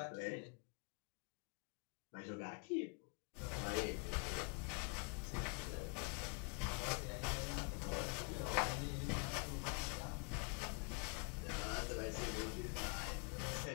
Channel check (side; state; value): right; quieter; 35.0 dB